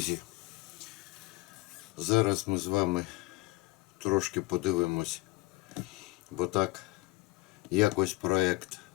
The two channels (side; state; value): right; quieter; 22.2 dB